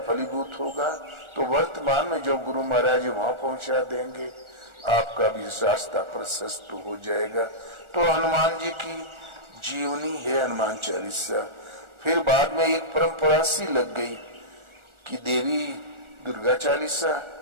फलीभूत होगा तो वर्तमान में जो गुरु महाराज वहां पहुंचा देंगे, आपका भी रास्ता प्रशस्त हो जाएगा। तो हनुमान जी की जीवनी है हनुमान चालीसा। फिर बाद में एक परंपरा सी लग गई कि देवी दुर्गा चालीसा,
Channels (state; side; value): late; left; 1.4 ms